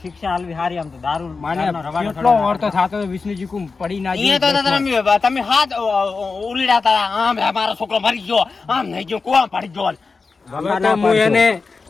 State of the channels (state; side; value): quieter; right; 4.4 dB